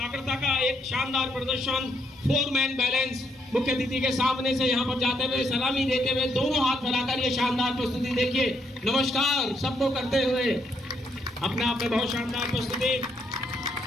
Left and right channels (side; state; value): both; normal; correlation 0.74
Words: का एक शानदार प्रदर्शन। 4 मैन बैलेंस मुख्य अतिथि के सामने से यहाँ पर जाते हुए सलामी देते हुए दोनों हाथ फैलाकर ये शानदार प्रस्तुति देखिए, नमस्कार सबको करते हुए अपने आप में बहुत शानदार प्रस्तुति।